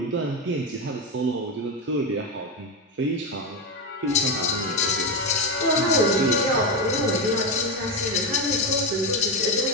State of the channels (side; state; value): both; normal; correlation 0.12